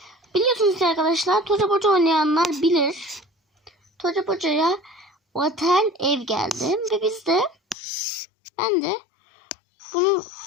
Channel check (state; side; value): drops out; right; at 7.8 s